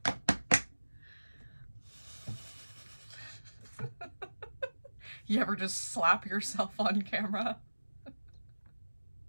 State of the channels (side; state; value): both; inverted; correlation -1.00